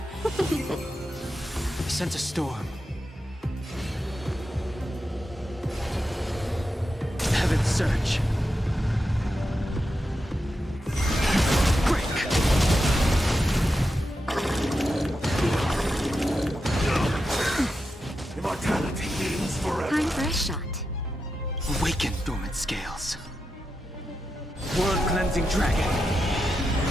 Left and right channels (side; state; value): both; normal; correlation 0.88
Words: Sense a storm. Heaven surge. Break. Immortality means forever. Time for a shot. Awaken dormant scales. World cleansing dragon.